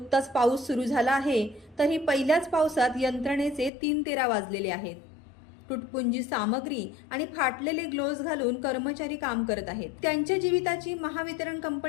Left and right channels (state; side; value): drops out; right; at 3.7 s